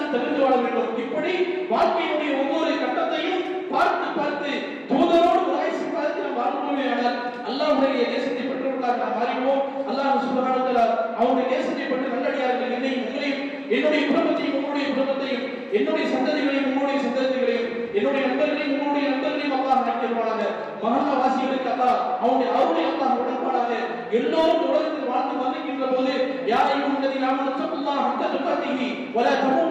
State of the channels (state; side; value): identical; both; correlation 1.00